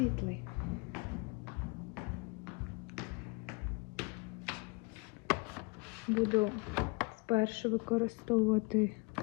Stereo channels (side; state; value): right; quieter; 28.2 dB